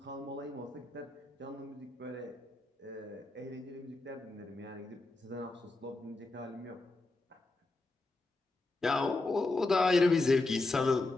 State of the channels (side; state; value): right; quieter; 3.1 dB